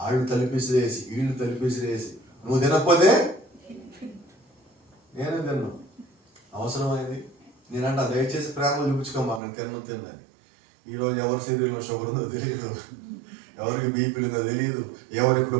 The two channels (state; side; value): drops out; left; at 9.4 s